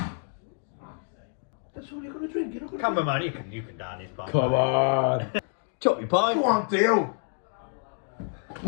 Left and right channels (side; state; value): right; silent; 60 dB below the other